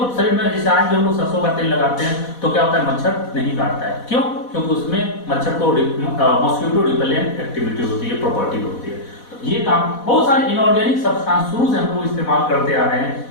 शरीर में, जैसे आज भी हम लोग सरसों का तेल लगाते हैं तो क्या होता है, मच्छर नहीं काटता है। क्यों? क्योंकि उसमें मच्छर को मॉस्किटो रिपेलेंट एक्टिविटी होती है, प्रॉपर्टी होती है। तो ये काम बहुत सारे इनऑर्गेनिक सब्सटेंस शुरू से हम लोग इस्तेमाल करते आ रहे हैं,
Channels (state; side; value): late; right; 4.1 ms